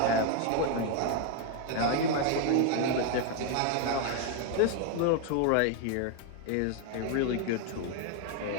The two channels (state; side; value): different; both; correlation 0.01